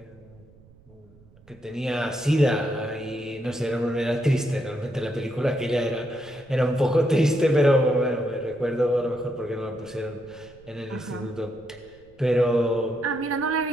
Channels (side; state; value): right; noise; rumble, 26 dB below the sound